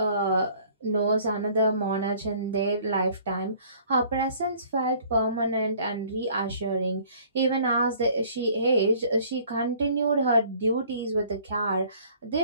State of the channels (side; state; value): both; inverted; correlation -0.55